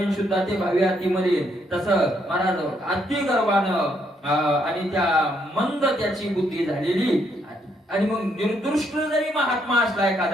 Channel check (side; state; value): both; normal; correlation 0.74